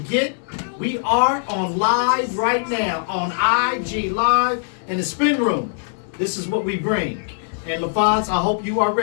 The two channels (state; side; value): silent; right; digital silence